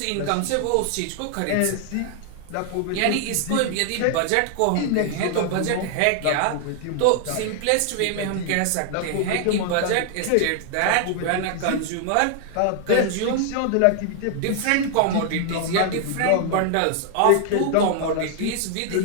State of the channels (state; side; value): different; both; correlation 0.00